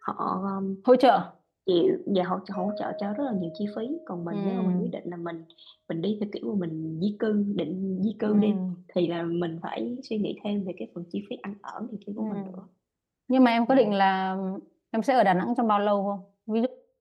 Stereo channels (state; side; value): identical; both; correlation 1.00